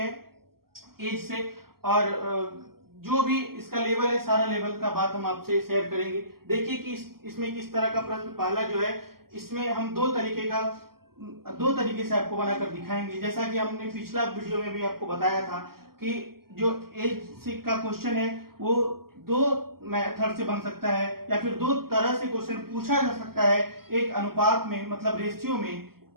एज से, और जो भी इसका लेवल है सारा लेवल का बात हम आपसे शेयर करेंगे। देखिए कि इसमें किस तरह का प्रश्न पहला जो है इसमें हम दो तरीके से आपको बनाकर दिखाएंगे। जैसा कि हमने पिछला वीडियो में भी आपको बताया था कि जो एज का क्वेश्चन है वो दो मेथड से बन सकता है या फिर दो तरह से क्वेश्चन पूछा जा सकता है, एक अनुपात में मतलब रेशियो में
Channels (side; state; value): left; late; 0.93 ms